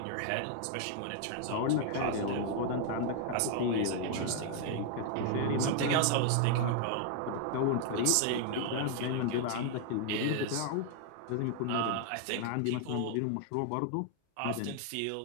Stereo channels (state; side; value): different; both; correlation 0.00